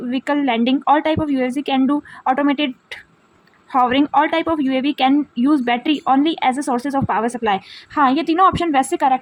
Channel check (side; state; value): both; identical; correlation 1.00